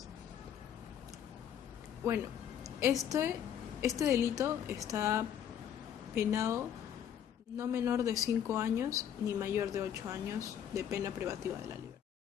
Bueno, este delito está penado no menor de 5 años ni mayor de 8 años de pena privativa de la libertad.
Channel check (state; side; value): quieter; right; 9.4 dB